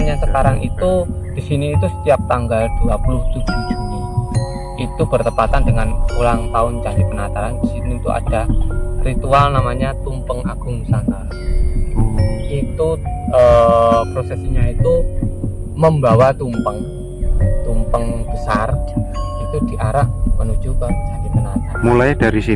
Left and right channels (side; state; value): both; identical; correlation 1.00